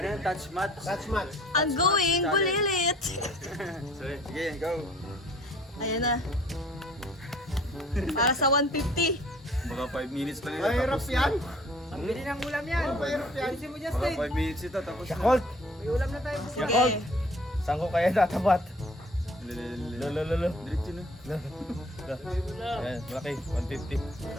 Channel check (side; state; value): both; normal; correlation 0.53